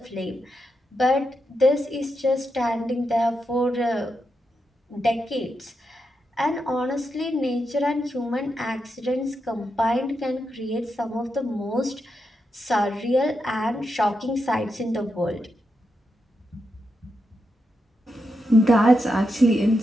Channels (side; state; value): both; normal; correlation 0.85